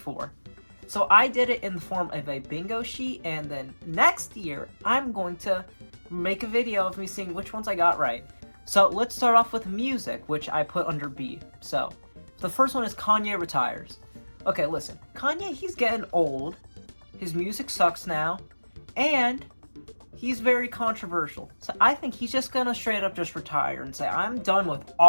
So I did it in the form of a bingo sheet, and then next year I'm going to make a video of me seeing which ones I got right. So let's start off with music, which I put under B. So the first one is Kanye retires. Okay, listen, Kanye, he's getting old. His music sucks now, and he's very controversial. So I think he's just gonna straight up just retire and say, I'm done with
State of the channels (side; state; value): both; inverted; correlation -1.00